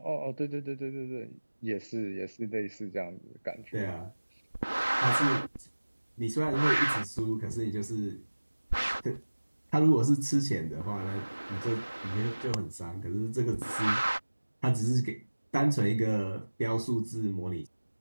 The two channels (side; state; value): both; inverted; correlation -1.00